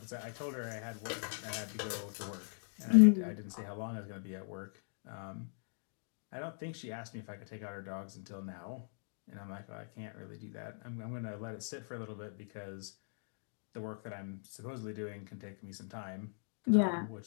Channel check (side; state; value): right; silent; digital silence